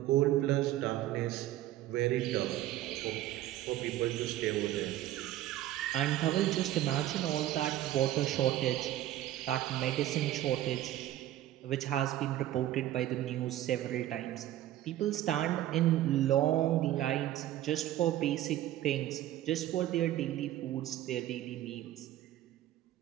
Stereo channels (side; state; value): left; quieter; 13.7 dB